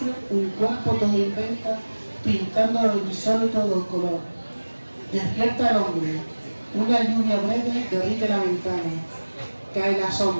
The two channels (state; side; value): inverted; both; correlation -1.00